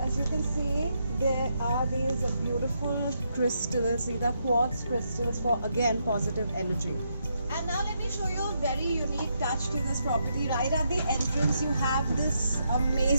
you can see, there are these beautiful crystals. These are quartz crystals for, again, positive energy. And now let me show you a very unique touch to this property. Right at the entrance, you have this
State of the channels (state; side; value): inverted; both; correlation -0.79